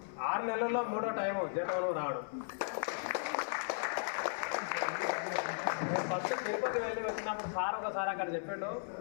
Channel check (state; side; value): silent; right; 54 dB below the other